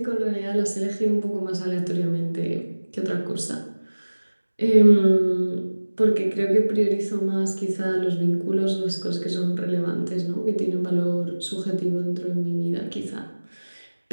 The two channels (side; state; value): both; inverted; correlation -1.00